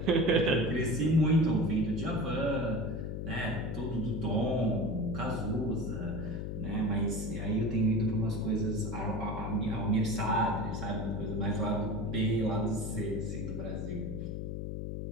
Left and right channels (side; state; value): left; noise; hum, 4 dB below the sound